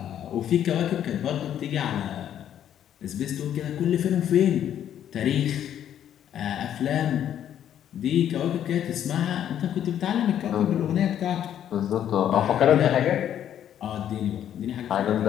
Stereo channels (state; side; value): quieter; right; 10.3 dB